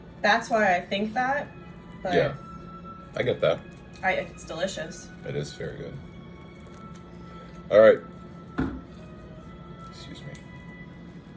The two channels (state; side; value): identical; both; correlation 1.00